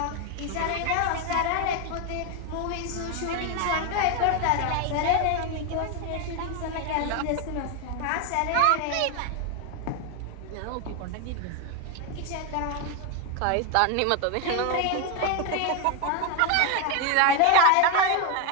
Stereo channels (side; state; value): both; different; correlation 0.01